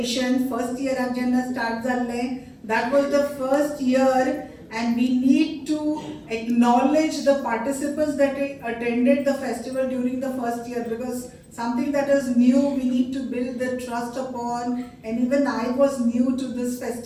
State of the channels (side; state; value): both; identical; correlation 1.00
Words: First year जेन्ना start जाले, that was the first year, and we need to acknowledge the participants that attended the festival during the first year, because something that is new, we need to build the trust upon. And even I was new to this